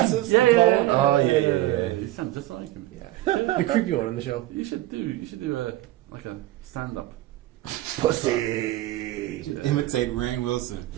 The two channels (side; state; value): left; quieter; 16.0 dB